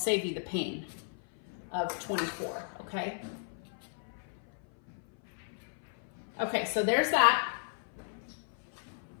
you the pain of 24. Okay. Okay. So there's that.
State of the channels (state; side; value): silent; right; 55 dB below the other